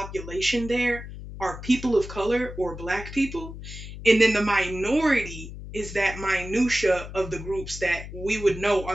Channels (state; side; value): noise; left; hum, 11 dB below the sound